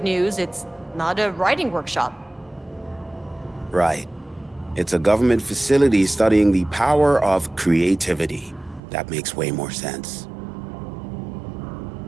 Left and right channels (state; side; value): drops out; left; at 8.8 s